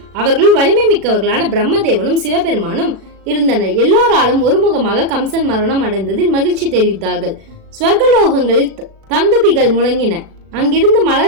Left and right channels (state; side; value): late; left; 36 ms